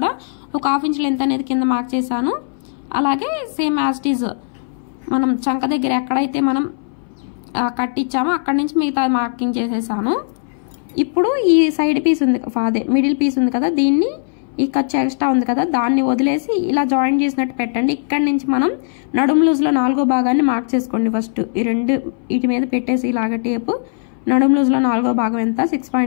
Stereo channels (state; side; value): silent; right; 62 dB below the other